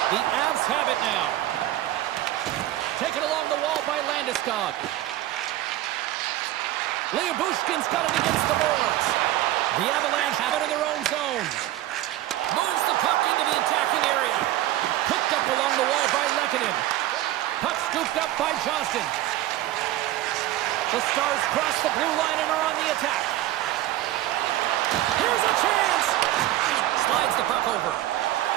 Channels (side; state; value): left; quieter; 14.7 dB